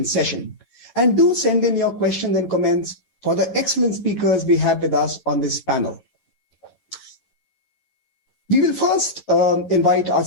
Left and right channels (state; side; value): late; right; 11 ms